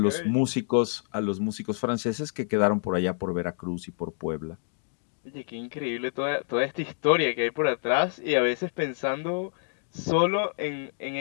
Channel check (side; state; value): right; silent; digital silence